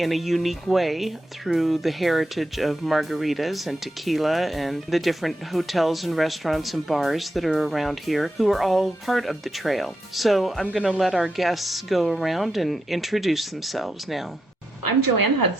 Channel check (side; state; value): both; normal; correlation 0.85